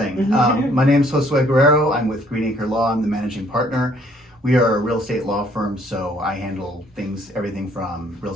My name is Josue Guerrero. I'm with Greenacre Law. I'm the managing partner. We are a real estate law firm, so I handle everything from real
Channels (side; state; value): both; normal; correlation 0.63